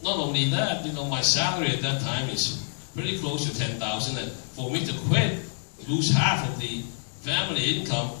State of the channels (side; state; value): right; silent; digital silence